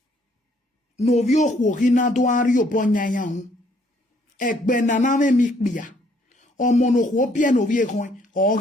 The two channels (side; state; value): both; normal; correlation 0.65